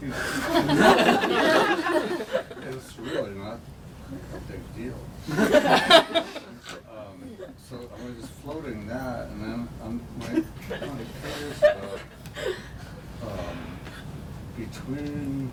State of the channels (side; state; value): both; identical; correlation 1.00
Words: really not a big deal. So I was just floating that, and then I'm curious about between